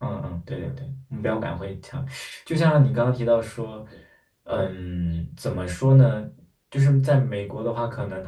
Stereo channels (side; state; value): both; identical; correlation 1.00